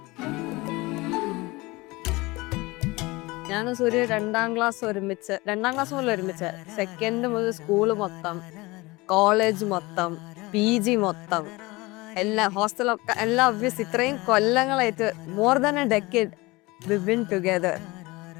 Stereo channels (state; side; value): quieter; right; 22.5 dB